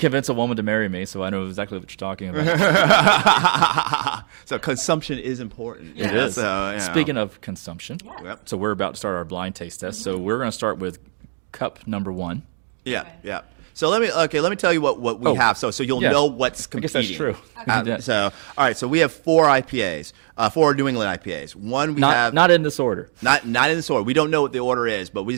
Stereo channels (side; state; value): left; silent; 63 dB below the other